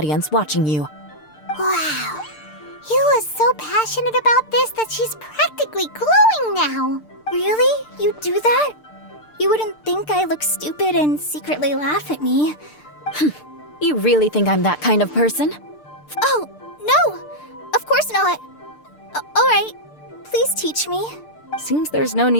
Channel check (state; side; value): late; right; 6.7 ms